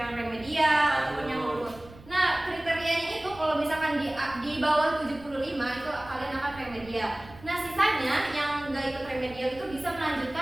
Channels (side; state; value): right; noise; rumble, 20 dB below the sound